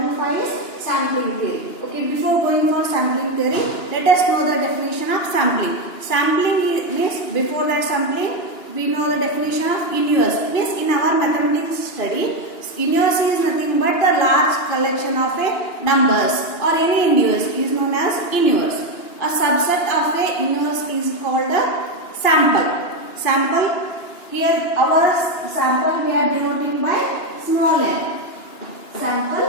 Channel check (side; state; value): right; late; 2.9 ms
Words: 5 is sampling theory. Okay, before going for sampling theory, let us know the definition of sampling. Sampling means before that sampling we know the definition of inverse. Means in our mathematics study, inverse is nothing but the large collection of a numbers or any inverse is known as inverse. A subset of a inverse is called a sample. Sample, here our sample we are denoting by small n.